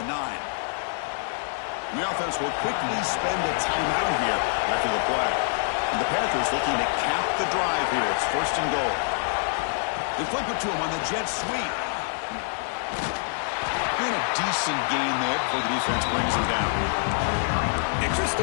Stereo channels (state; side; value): silent; right; digital silence